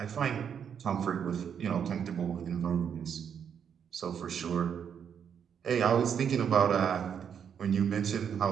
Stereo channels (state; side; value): quieter; left; 7.8 dB